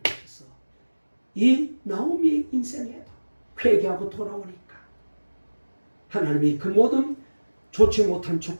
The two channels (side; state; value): both; inverted; correlation -1.00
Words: 이 나오미의 인생에도 회개하고 돌아오니까 하나님이 그 모든 좋지 못한